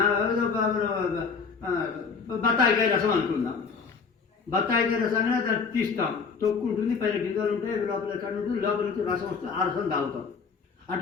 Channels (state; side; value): quieter; right; 5.3 dB